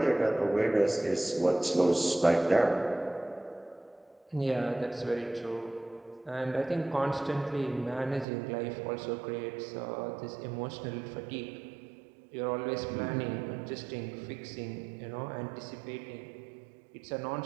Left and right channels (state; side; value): drops out; left; at 8.2 s